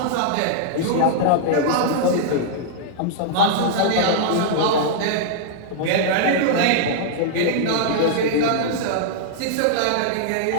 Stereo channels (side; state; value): both; different; correlation -0.02